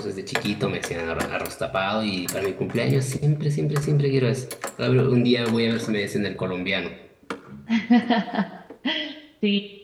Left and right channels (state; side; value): identical; both; correlation 1.00